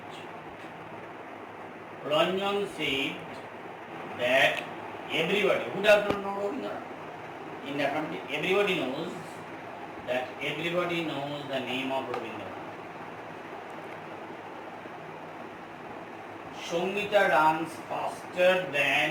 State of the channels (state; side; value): identical; both; correlation 1.00